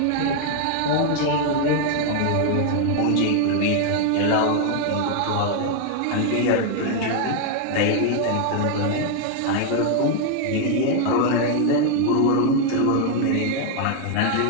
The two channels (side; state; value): both; different; correlation 0.00